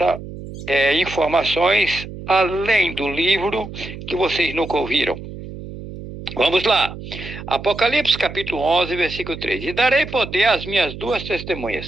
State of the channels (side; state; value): right; noise; hum, 11 dB below the sound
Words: informações além do livro que vocês nunca ouviram. Vamos lá. Apocalipse capítulo 11, versículo 3. E darei poder às minhas duas